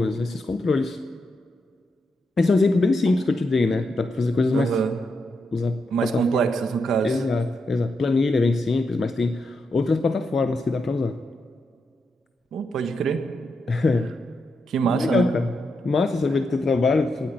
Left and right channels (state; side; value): normal; both; correlation 0.84